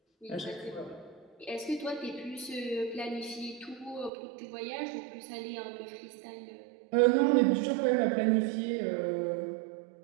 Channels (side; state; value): left; drops out; at 4.1 s